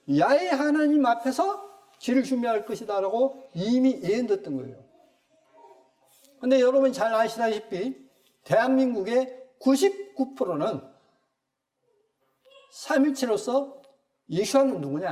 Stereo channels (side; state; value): both; identical; correlation 1.00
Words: 야훼 하나님 앞에서 길을 준비할 것이다 라고 이미 예언됐던 거예요. 그런데 여러분이 잘 아시다시피 대한민국의 99%는 삼일체로서 예수와는